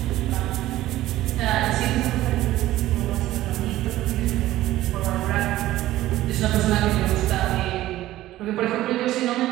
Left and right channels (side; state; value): left; quieter; 15.2 dB